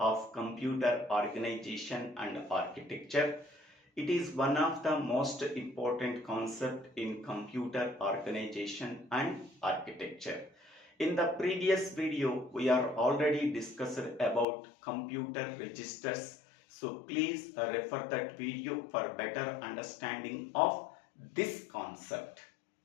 computer organization and architecture. It is one of the most important concept in computer organization and architecture. In the previous video, we are already discussed about computer registers. So please refer that video for better understanding of this concept.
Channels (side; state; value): right; drops out; at 14.5 s